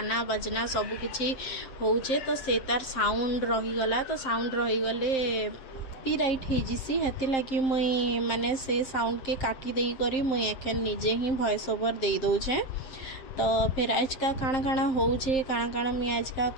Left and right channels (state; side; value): late; right; 7.6 ms